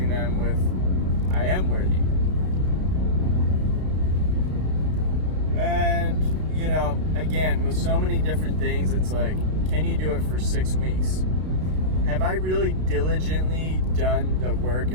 them with, I am worthy. And, you know, again, with so many different things, it's like, can you do it for 6 weeks? Have I really diligently done the work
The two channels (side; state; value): left; late; 32 ms